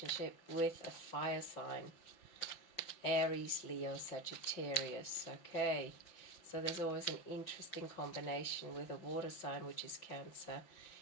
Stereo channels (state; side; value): late; right; 5.5 ms